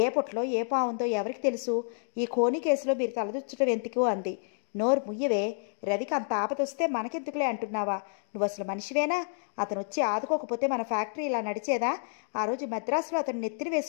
ఏ పుట్లో ఏ పావుందో ఎవరికి తెలుసు? ఈ ఖోనీ కేసులో మీరు తలదొచ్చటం ఎందుకు అంది. నోరు ముయ్యవే. రవికి అంత ఆపదొస్తే మనకెందుకులే అంటున్నావా? నువ్వు అసలు మనిషివేనా? అతను వచ్చి ఆదుకోకపోతే మన ఫ్యాక్టరీ ఇలా నడిచేదా? ఆ రోజు మద్రాసులో అతను నెత్తిని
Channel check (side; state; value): right; silent; digital silence